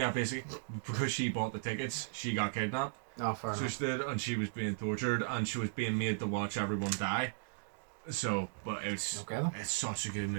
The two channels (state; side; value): silent; left; digital silence